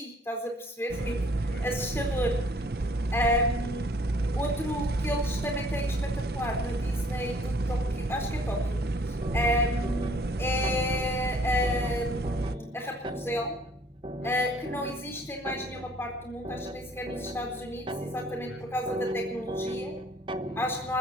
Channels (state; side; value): normal; both; correlation 0.58